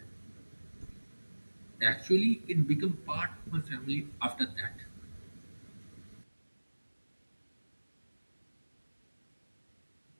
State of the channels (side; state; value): both; inverted; correlation -1.00